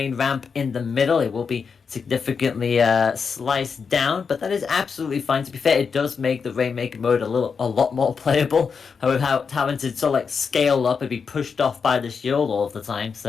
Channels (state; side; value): quieter; right; 5.8 dB